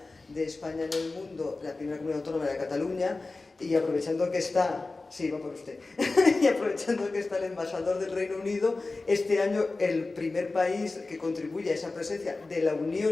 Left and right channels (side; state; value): right; quieter; 3.5 dB